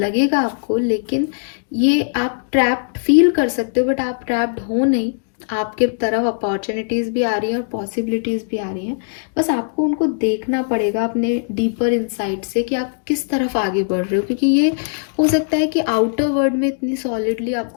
आपको, लेकिन ये आप ट्रैप्ड फील कर सकते हो, बट आप ट्रैप्ड हो नहीं। आपके तरफ अपॉर्चुनिटीज़ भी आ रही हैं और पॉसिबिलिटीज़ भी आ रही हैं, बस आपको उनको देखना पड़ेगा अपने डीपर इनसाइट से कि आप किस तरफ आगे बढ़ रहे हो। क्योंकि ये हो सकता है कि आउटर वर्ल्ड में इतनी सॉलिडली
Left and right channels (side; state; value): right; silent; digital silence